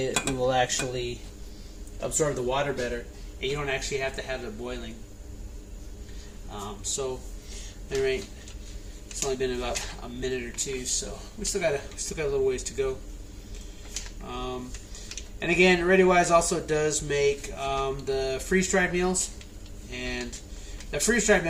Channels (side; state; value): both; identical; correlation 1.00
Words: will actually absorb the water better, and you don't actually have to have it boiling. So, anyway, it's only been about a minute or two, so we still got a little ways to go. And again, ReadyWise also does make the freeze-dried meals, and the freeze-dried